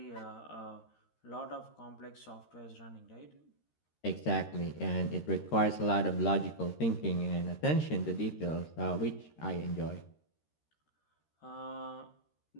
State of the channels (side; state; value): right; late; 13 ms